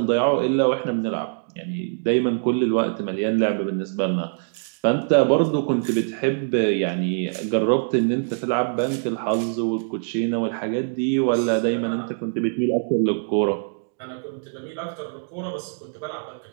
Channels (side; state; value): left; silent; digital silence